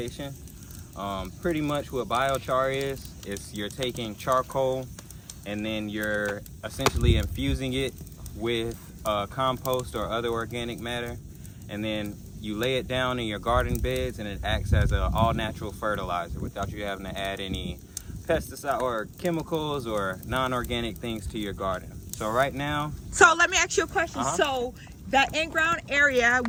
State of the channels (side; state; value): both; identical; correlation 1.00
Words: Pretty much what biochar is you're taking charcoal and then you're essentially infusing it with compost or other organic matter, and then you lay it down in your garden beds, and it acts as an all-natural fertilizer without you having to add any pesticide or chemicals or non-organic things to your garden. So right now, so let me ask you a question. So that in-ground area,